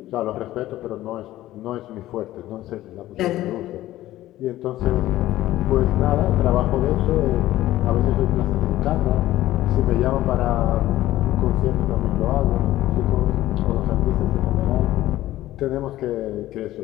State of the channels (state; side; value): quieter; right; 15.1 dB